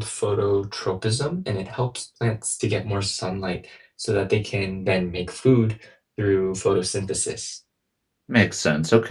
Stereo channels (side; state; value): both; identical; correlation 1.00